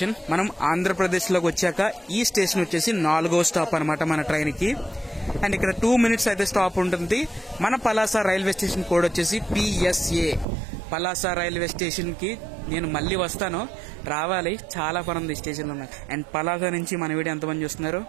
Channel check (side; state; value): left; drops out; at 10.5 s